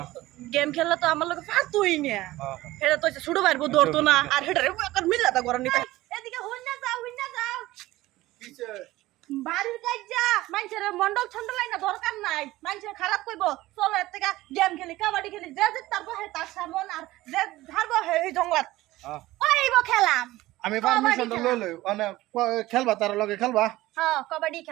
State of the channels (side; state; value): left; quieter; 17.4 dB